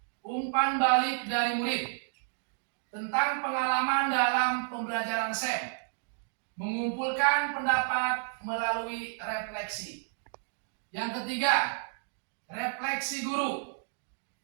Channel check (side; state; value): left; silent; digital silence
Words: umpan balik dari murid tentang pengalaman dalam pembelajaran SEM, mengumpulkan pendapat melalui refleksi. Yang ketiga, refleksi guru.